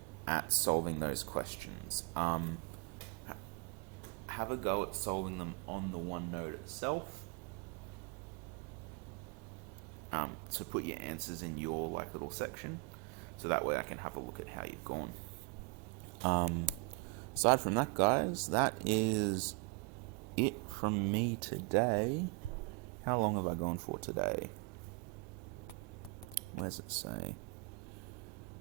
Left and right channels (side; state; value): left; quieter; 28.8 dB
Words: at solving those questions. Have a go at solving them on the OneNote itself. So put your answers in your little section, so that way I can have a look at how you've gone. Aside from that, guys, that is it from me today. How long have I gone for today? What does it say?